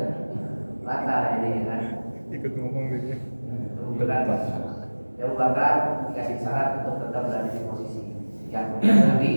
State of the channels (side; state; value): both; inverted; correlation -1.00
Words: Batal jadi kan. Ikut ngomong dia. Abu Bakar dikasih syarat untuk tetap berada di posisi. Yang kemudian Nabi